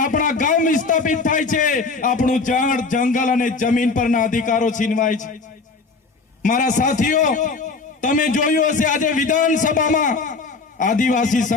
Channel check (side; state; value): right; quieter; 4.2 dB